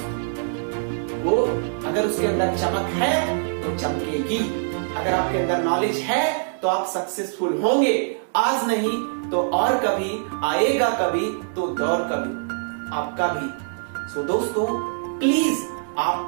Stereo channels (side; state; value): left; silent; digital silence